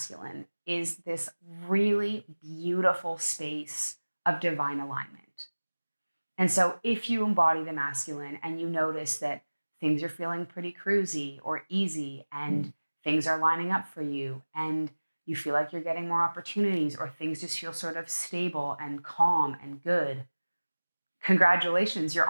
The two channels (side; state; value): both; inverted; correlation -1.00